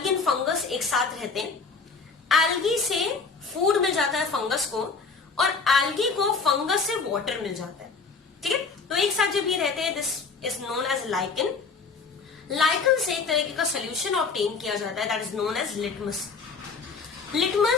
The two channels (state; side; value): quieter; right; 4.7 dB